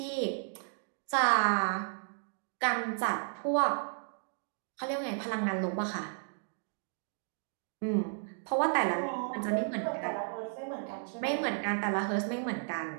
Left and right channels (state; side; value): silent; left; digital silence